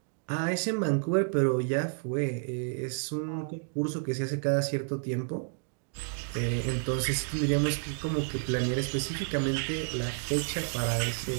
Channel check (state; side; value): silent; left; digital silence